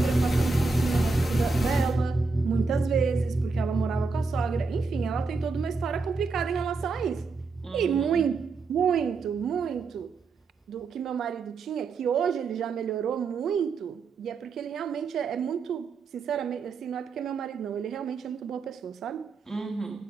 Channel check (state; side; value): quieter; left; 4.3 dB